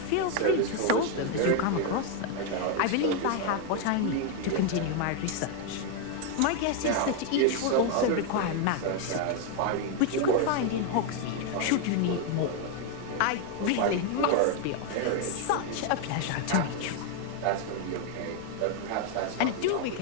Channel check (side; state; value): both; different; correlation 0.01